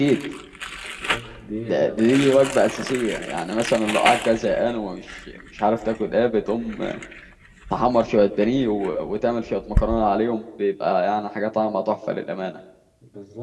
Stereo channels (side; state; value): both; identical; correlation 1.00